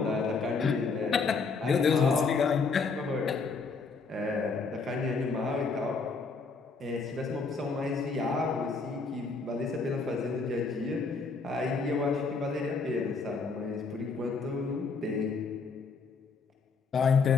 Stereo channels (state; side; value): quieter; right; 4.5 dB